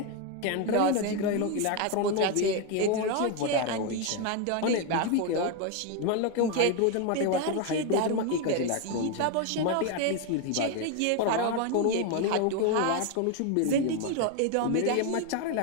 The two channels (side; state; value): both; different; correlation 0.01